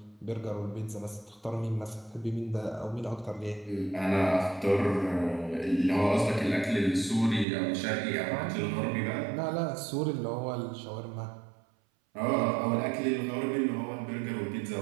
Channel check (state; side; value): drops out; left; at 7.5 s